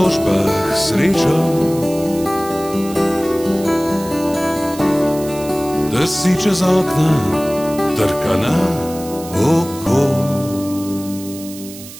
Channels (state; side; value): noise; right; hiss, 15 dB below the sound